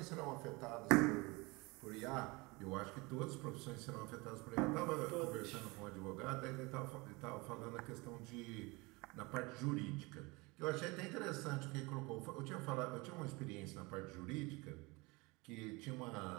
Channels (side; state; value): left; quieter; 25.2 dB